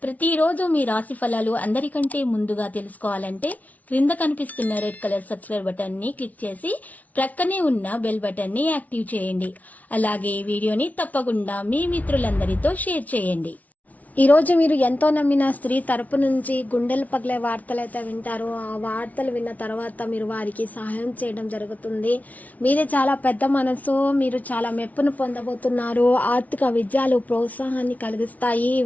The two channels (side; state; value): right; late; 0.072 ms